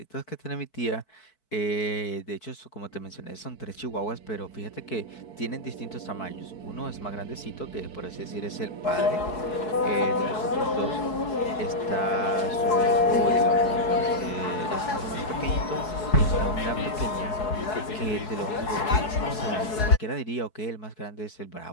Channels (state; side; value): late; right; 4.7 ms